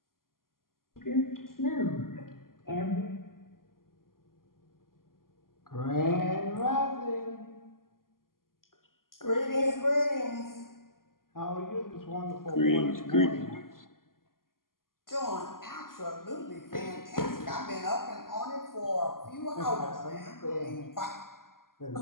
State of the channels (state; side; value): late; right; 0.91 ms